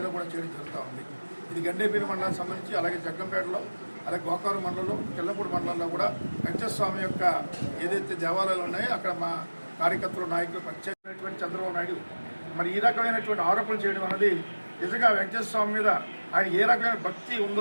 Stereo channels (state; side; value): inverted; both; correlation -1.00